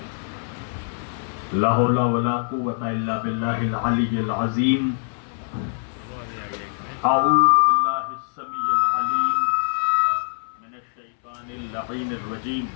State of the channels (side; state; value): right; silent; 63 dB below the other